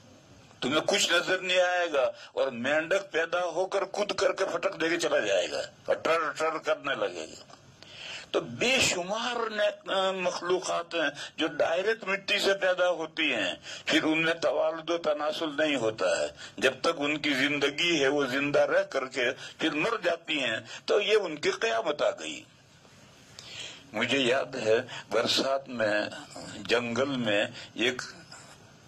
تمہیں کچھ نظر نہیں آئے گا، اور مینڈک پیدا ہو کر کود کر کے پھٹک دے کے چلا جائے گا اور ٹر ٹر کرنے لگے گا۔ تو بے شمار مخلوقات ہیں جو ڈائریکٹ مٹی سے پیدا ہوتی ہیں، پھر ان میں توالد و تناسل نہیں ہوتا ہے، جب تک ان کی زندگی ہے وہ زندہ رہ کر کے پھر مر جاتی ہیں، تو یہ ان کی قیامت آ گئی۔ مجھے یاد ہے برسات میں جنگل میں ایک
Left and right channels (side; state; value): both; identical; correlation 1.00